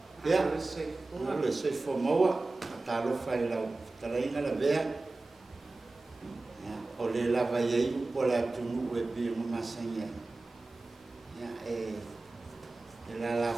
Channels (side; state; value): left; quieter; 3.2 dB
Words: ia le se fo moa talo fai la talaina la vea o le lava ia po la tunu e bi mo masanya ia la